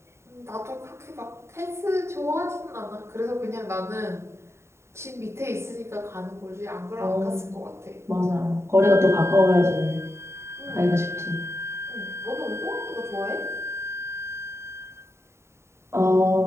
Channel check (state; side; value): late; left; 0.13 ms